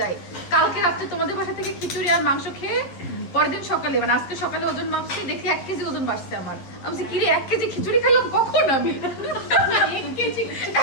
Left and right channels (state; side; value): late; right; 11 ms